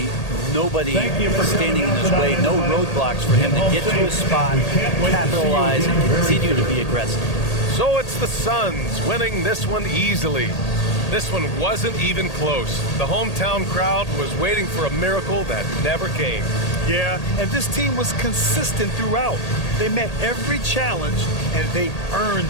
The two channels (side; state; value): right; late; 1.8 ms